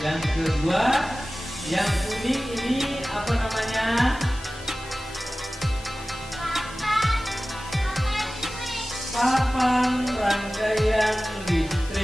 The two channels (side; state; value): both; normal; correlation 0.96